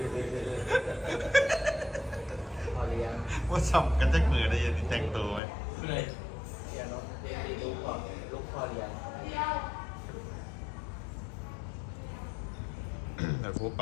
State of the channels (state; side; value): drops out; right; at 5.4 s